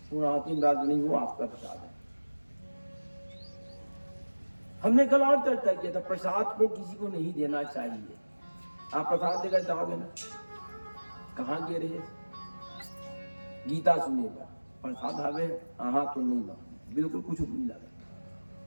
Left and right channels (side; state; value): both; inverted; correlation -1.00